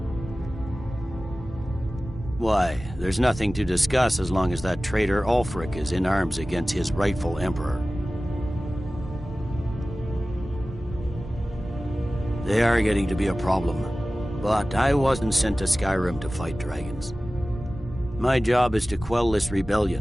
Why, there's nothing to discuss as long as that traitor Ulfric is in arms against his rightful emperor. They are getting to be a problem, but I wasn't sent to Skyrim to fight dragons. My job is to quell this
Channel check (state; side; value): normal; both; correlation 0.96